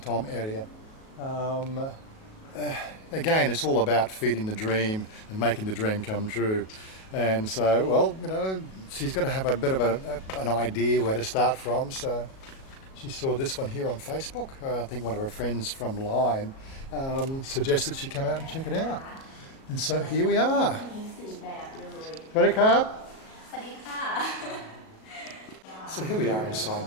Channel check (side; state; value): right; late; 37 ms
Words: area. Again, it's all about feeding the dream and making the dream come true. And so, well, you know, she's got to have a bit of an idea where to start from. So she saw this one here on Facebook. I think one of her friends from Line suggested she come out and check it out. And so here we are. Ready, Carb? So here we are inside